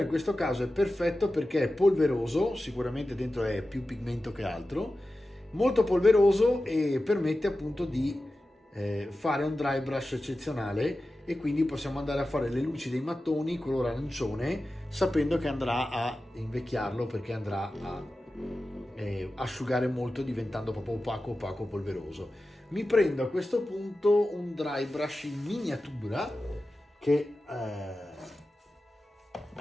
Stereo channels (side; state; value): both; normal; correlation 0.94